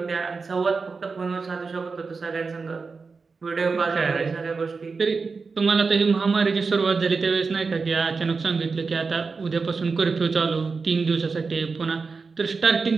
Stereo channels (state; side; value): quieter; left; 4.6 dB